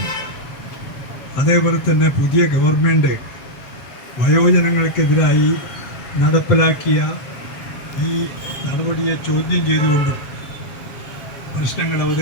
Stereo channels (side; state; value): right; late; 7.4 ms